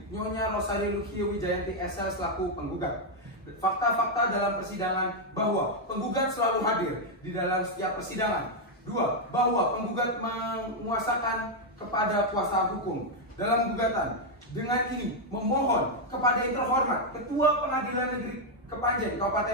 Nyonya Rosari Lukia Wijayanti Esa selaku penggugat. Fakta-fakta dalam persidangan bahwa penggugat selalu hadir di dalam setiap persidangan. 2. Bahwa penggugat menguasakan kepada kuasa hukum dalam gugatan. Dengan ini memohon kepada yang terhormat Ketua Pengadilan Negeri Kepanjen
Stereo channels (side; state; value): both; normal; correlation 0.00